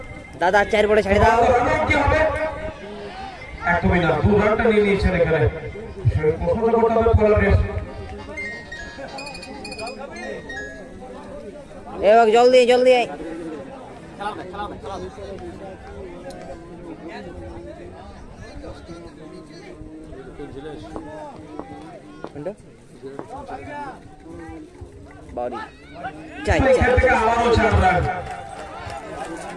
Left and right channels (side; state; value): both; identical; correlation 1.00